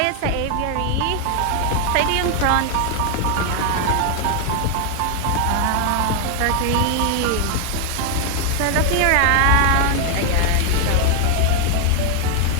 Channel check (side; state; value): both; different; correlation 0.00